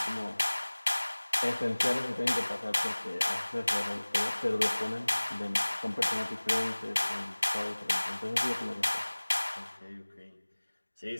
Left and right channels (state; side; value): inverted; both; correlation -1.00